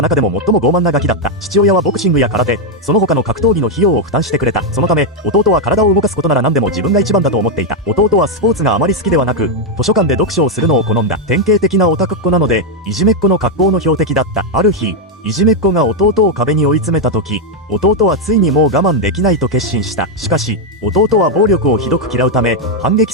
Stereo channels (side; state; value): both; normal; correlation 0.02